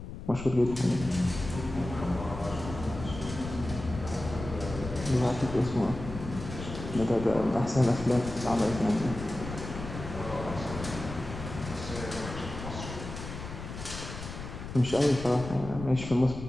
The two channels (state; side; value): noise; left; rumble, 9 dB below the sound